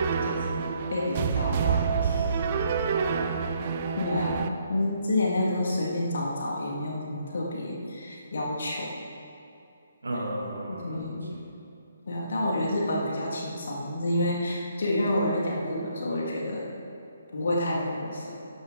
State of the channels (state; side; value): inverted; both; correlation -0.70